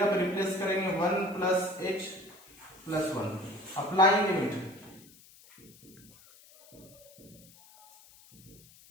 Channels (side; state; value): left; noise; hiss, 24 dB below the sound